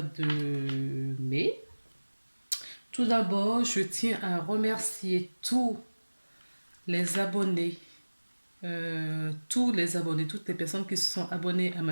de mai. Tout d'abord, je tiens à remercier les tous les abonnés, toutes les personnes qui se sont abonnées à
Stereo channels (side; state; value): both; inverted; correlation -1.00